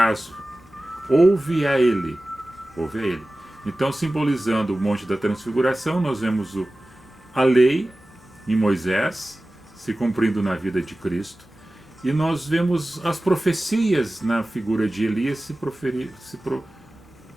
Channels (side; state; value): both; normal; correlation 0.97